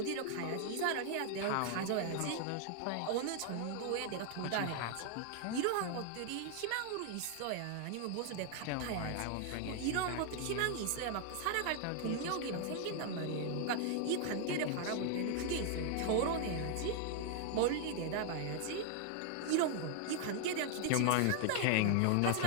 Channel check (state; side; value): different; both; correlation 0.00